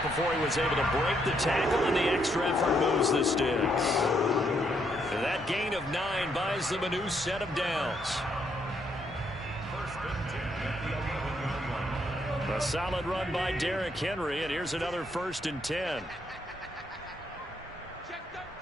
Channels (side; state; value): both; normal; correlation 0.74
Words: before he was able to break the tackle, and the extra effort moves the sticks. And that gain of 9 buys them a new set of downs. A solid run by Derrick Henry, and here's another 1st and 10.